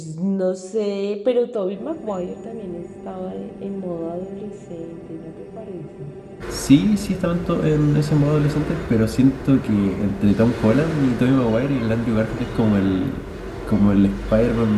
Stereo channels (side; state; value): both; identical; correlation 1.00